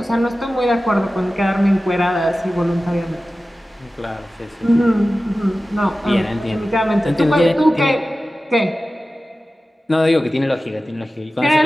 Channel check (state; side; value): normal; both; correlation 0.95